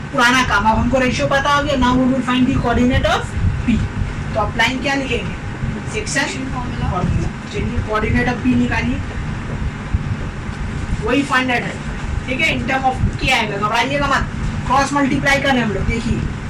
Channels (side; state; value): both; identical; correlation 1.00